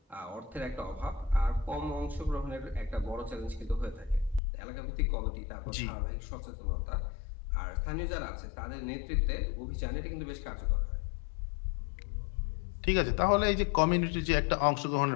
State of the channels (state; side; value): drops out; right; at 4.4 s